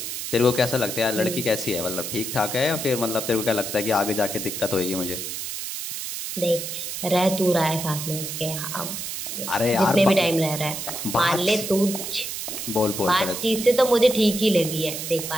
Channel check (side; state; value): right; noise; hiss, 6 dB below the sound